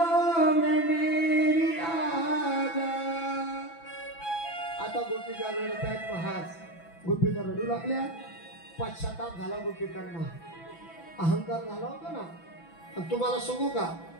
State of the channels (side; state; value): right; late; 6.0 ms